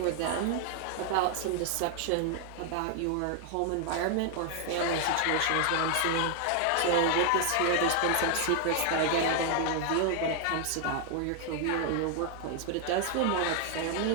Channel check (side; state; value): both; different; correlation 0.00